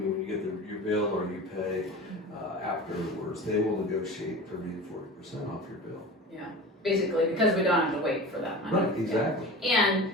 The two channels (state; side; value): normal; both; correlation 0.34